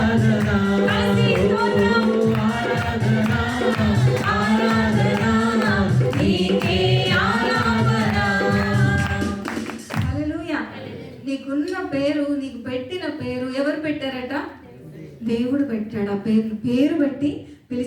నీకున్న పేరు, నీకు పెట్టిన పేరు ఎవరు పెట్టారట? దేవుడు పెట్టాడు. ఆ పేరు పెట్టి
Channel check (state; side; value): identical; both; correlation 1.00